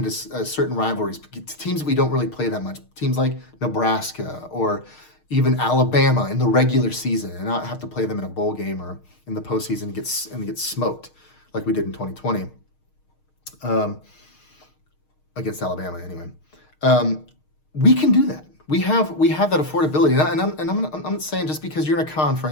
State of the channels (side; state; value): right; late; 6.5 ms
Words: certain rivalries, teams that we don't really play that much, teams like Nebraska or even Alabama in the regular season, and not have to play them in a bowl game or in the postseason and get smoked like we did in 2020 against Alabama. Anyway, we can do that. We have that affordability, and I'm not saying just because you're in a